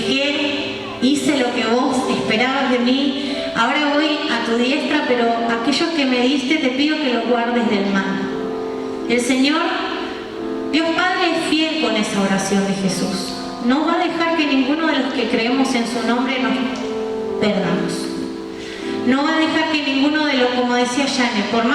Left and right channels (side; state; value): both; identical; correlation 1.00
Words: hice lo que vos esperabas de mí, ahora voy a tu diestra, pero aquellos que me diste te pido que los guardes del mal. El Señor, Dios Padre, es fiel con esa oración de Jesús. No va a dejar que ninguno de los que creemos en su nombre nos perdamos. No va a dejar que ninguno de los, como decía Yane, por